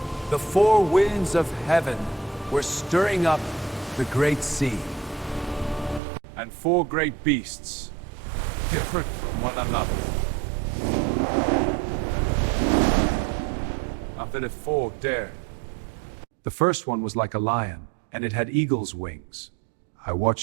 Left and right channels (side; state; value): left; drops out; at 6.0 s